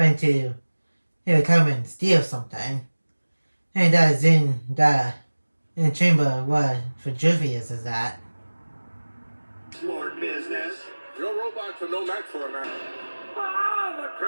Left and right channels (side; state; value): both; inverted; correlation -1.00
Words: to come and steal something. And that is in the chamber where Vitruvius is at. Smart business. Your robots are no match for a man. Ah, the